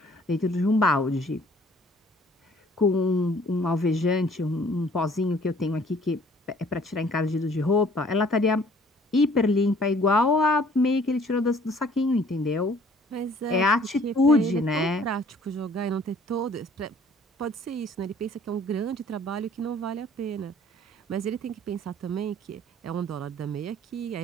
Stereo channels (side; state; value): both; normal; correlation 0.56